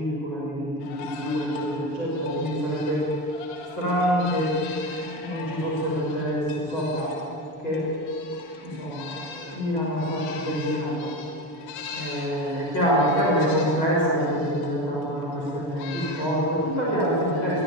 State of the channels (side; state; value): right; late; 6.9 ms